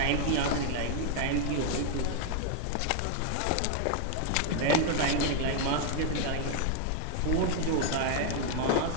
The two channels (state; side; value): different; both; correlation 0.00